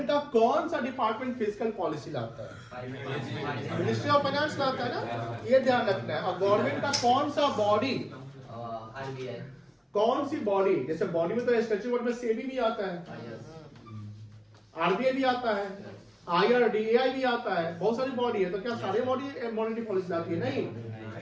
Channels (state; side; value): identical; both; correlation 1.00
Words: का कौन सा डिपार्टमेंट फिस्कल पॉलिसी लाता है, मिनिस्ट्री ऑफ फाइनेंस लाता है ना, ये ध्यान रखना है। और गवर्नमेंट का कौन सा बॉडी, आरबीआई, कौन सी बॉडी, जैसे बॉडी में तो स्टैट्यूट वर्ड में सेबी भी आता है, आरबीआई भी आता है, आईआरडीएआई भी आता है, बहुत सारी बॉडी है। तो क्या सारी बॉडी मॉनेटरी पॉलिसी लाती है, नहीं,